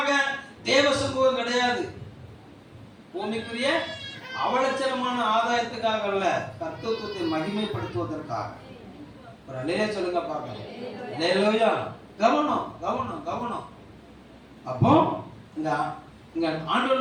தேவ சமூகம் கிடையாது. பூமிக்குரிய அவலட்சணமான ஆதாயத்துக்காக அல்ல, கர்த்தத்துவத்தை மகிமைப்படுத்துவதற்காக. ஒரு அல்லேலூயா சொல்லுங்க பார்க்கலாம். அல்லேலூயா. கவனம் கவனம் கவனம். அப்போ இங்க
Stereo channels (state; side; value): identical; both; correlation 1.00